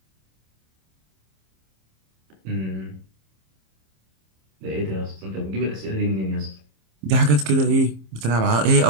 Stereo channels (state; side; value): late; left; 26 ms